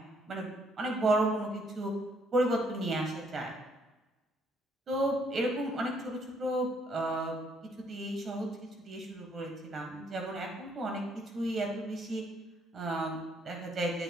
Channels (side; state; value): both; normal; correlation 0.68